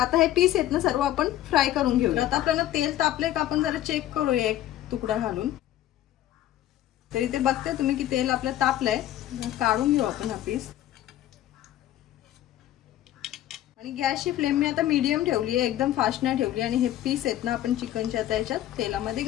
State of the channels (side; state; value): right; quieter; 13.1 dB